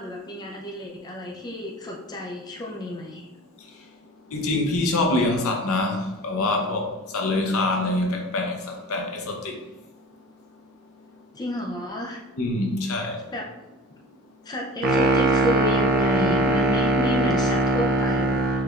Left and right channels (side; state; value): both; normal; correlation 0.40